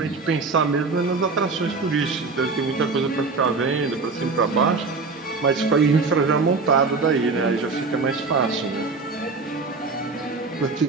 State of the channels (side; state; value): left; quieter; 4.2 dB